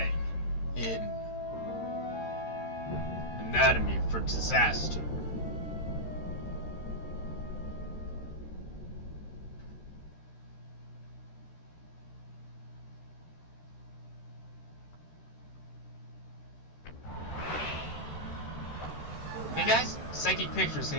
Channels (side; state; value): right; late; 13 ms